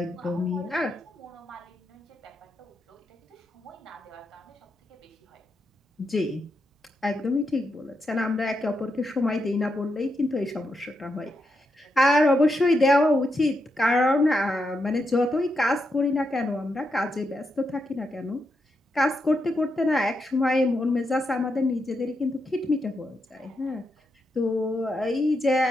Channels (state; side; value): normal; both; correlation 0.84